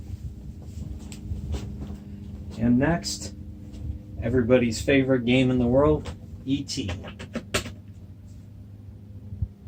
And next, everybody's favorite game in the world, E.T.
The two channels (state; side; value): identical; both; correlation 1.00